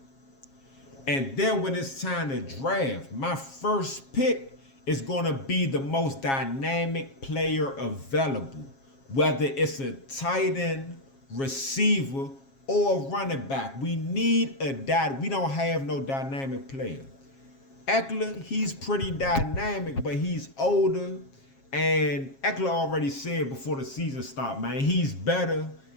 And then when it's time to draft, my first pick is going to be the most dynamic player available. whether it's a tight end, receiver, or a running back. We need we don't have no dynamic player. Eckler, he's pretty dynamic, but he's older. And Eckler already said before the season started, man, he's better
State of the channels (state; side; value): late; right; 7.4 ms